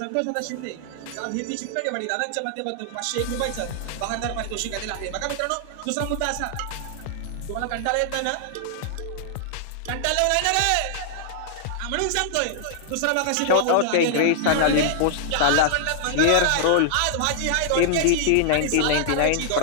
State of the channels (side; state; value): both; different; correlation -0.01